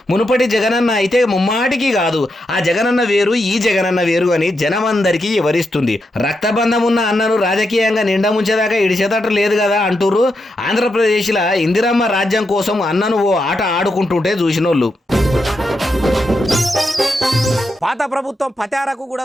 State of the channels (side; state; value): both; normal; correlation 0.84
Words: మునుపటి జగనన్న అయితే ముమ్మాటికి కాదు, ఆ జగనన్న వేరు ఈ జగనన్న వేరు అని జనమందరికీ వివరిస్తుంది. రక్తబంధం ఉన్న అన్నను రాజకీయంగా నిండా ముంచేదాకా ఇడిచేదట లేదు కదా అంటూరు. ఆంధ్రప్రదేశ్లో ఇందిరమ్మ రాజ్యం కోసం అన్నను ఓ ఆట ఆడుకుంటుంటే చూసినోళ్ళు. పాత ప్రభుత్వం పతారకు కూడా